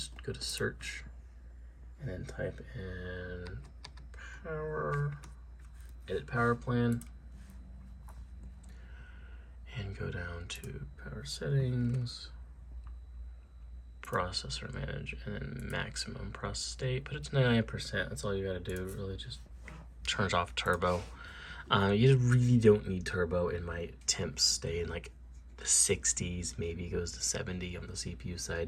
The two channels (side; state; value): both; identical; correlation 1.00